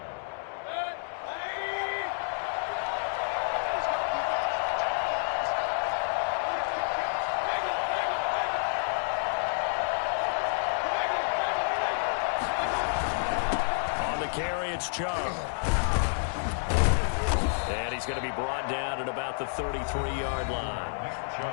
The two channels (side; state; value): right; silent; digital silence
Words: On the carry, it's Chubb. And he's going to be brought down at about the 33-yard